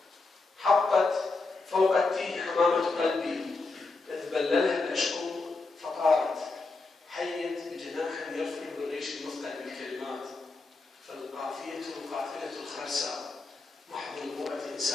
حطت فوق التيه حمامة قلبي، إذ بللها العشق فطارت، حيت بجناح يرفل بالريش المثقل بالكلمات، فالقافية قافلة الخرسة، محض نبوءة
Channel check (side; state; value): right; quieter; 3.7 dB